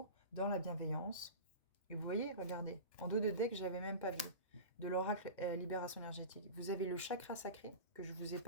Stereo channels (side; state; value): both; inverted; correlation -0.30